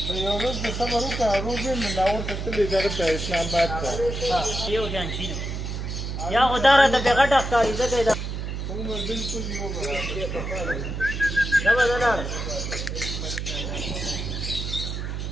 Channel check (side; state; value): right; noise; hum, 4 dB below the sound